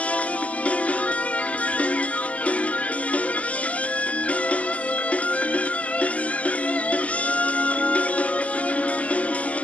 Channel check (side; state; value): right; late; 0.065 ms